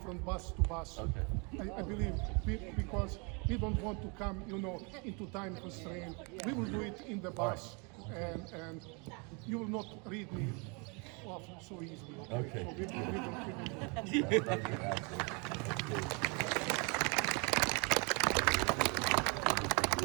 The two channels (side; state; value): left; quieter; 32.6 dB